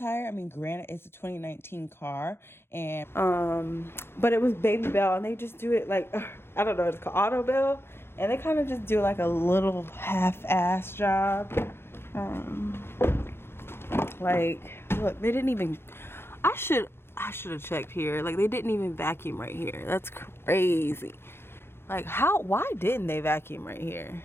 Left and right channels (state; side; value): late; right; 0.11 ms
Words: I mean, granted, it's a 2019 car, and but it was Baby Bell, and they just do it like, I don't know, it's called Auto Bell, and they kind of just do like a little half-ass job. Like, look, they didn't even, I should have checked here. Like, they didn't even vacuum right here. That's crazy. Like, why didn't they vacuum right here?